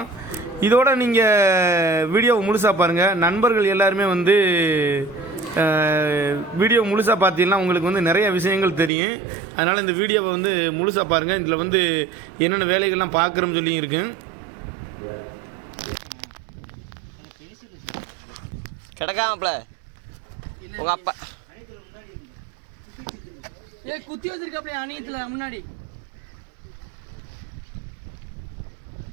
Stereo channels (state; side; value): drops out; left; at 8.9 s